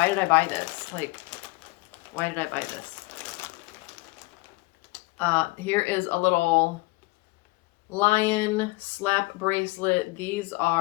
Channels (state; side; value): quieter; right; 24.1 dB